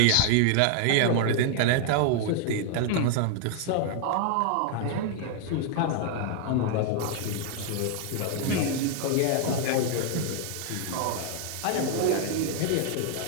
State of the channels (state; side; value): different; both; correlation 0.00